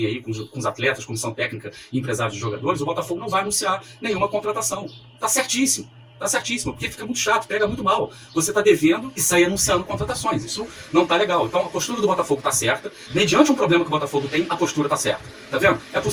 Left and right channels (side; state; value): both; identical; correlation 1.00